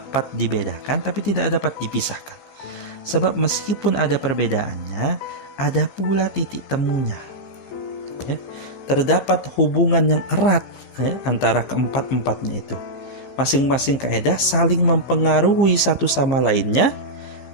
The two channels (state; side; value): late; right; 15 ms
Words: dibedakan tapi tidak dapat dipisahkan. Sebab meskipun ada perbedaannya, ada pula titik temunya. Ya, terdapat hubungan yang erat antara keempat-empatnya itu. Masing-masing kaidah saling mempengaruhi satu sama lainnya,